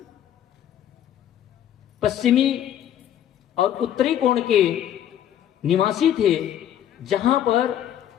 पश्चिमी और उत्तरी कोण के निवासी थे, जहां पर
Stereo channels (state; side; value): quieter; right; 10.7 dB